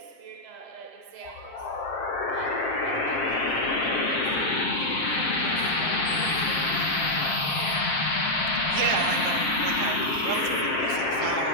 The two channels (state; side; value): late; right; 7.6 ms